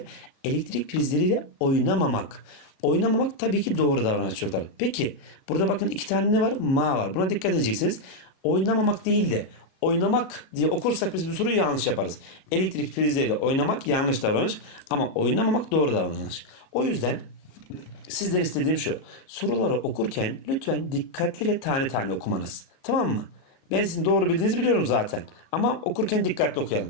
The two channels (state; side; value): late; right; 37 ms